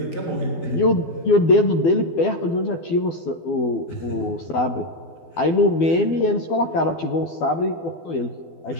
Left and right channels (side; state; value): right; late; 12 ms